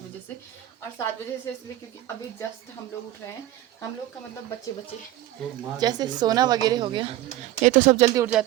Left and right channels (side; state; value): left; quieter; 14.3 dB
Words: बजे से। और 7 बजे से इसलिए क्योंकि अभी जस्ट हम लोग उठ रहे हैं। हम लोग का मतलब बच्चे जैसे सोना वगैरह हो गया, ये तो सब जल्दी उठ